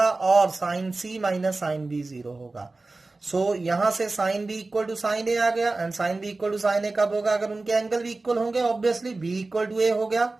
और sine C minus sine B zero होगा। So यहां से sine B equal to sine A आ गया, and sine B equal to sine A कब होगा, अगर उनके एंगल भी इक्वल होंगे, obviously B equal to A हो गया।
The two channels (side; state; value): left; quieter; 3.4 dB